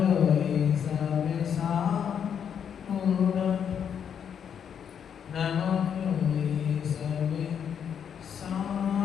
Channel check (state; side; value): quieter; right; 8.0 dB